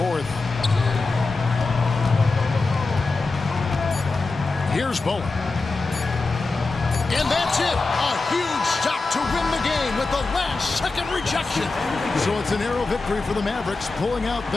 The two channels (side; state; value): right; quieter; 3.7 dB